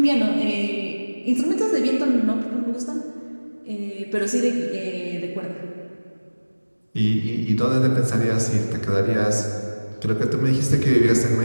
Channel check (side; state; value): both; inverted; correlation -1.00